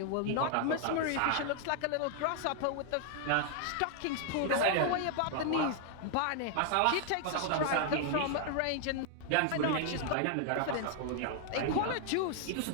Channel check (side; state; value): both; different; correlation 0.00